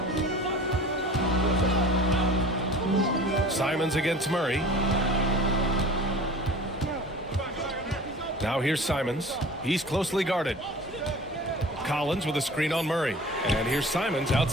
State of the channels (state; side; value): normal; both; correlation 0.41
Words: Simons against Murray. Now here's Simons. He's closely guarded. Collins with a screen on Murray. And here's Simons